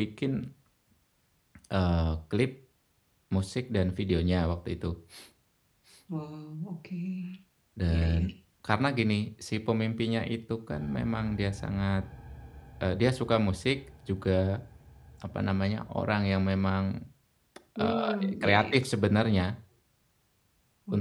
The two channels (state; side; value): identical; both; correlation 1.00